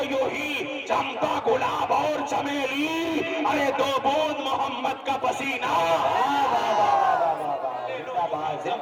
یوں ہی چمپا گلاب اور چمیلی. ارے دو بوند محمد کا پسینہ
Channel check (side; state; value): both; identical; correlation 1.00